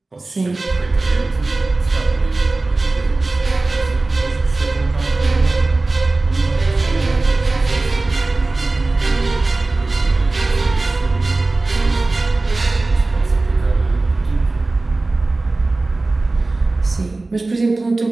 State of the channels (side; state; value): left; quieter; 3.2 dB